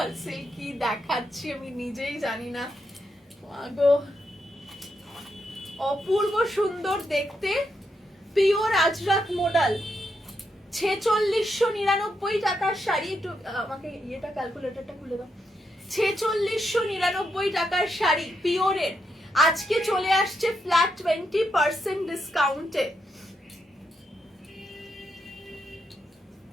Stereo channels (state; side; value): normal; both; correlation 0.82